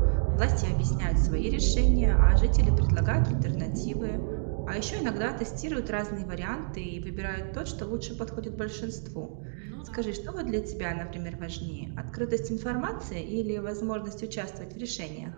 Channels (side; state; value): left; silent; digital silence